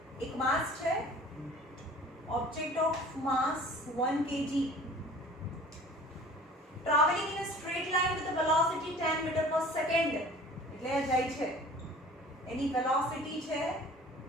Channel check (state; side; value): normal; both; correlation 0.47